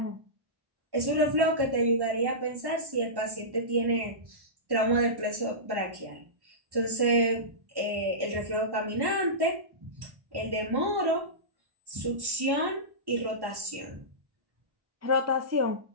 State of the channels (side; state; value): left; late; 1.1 ms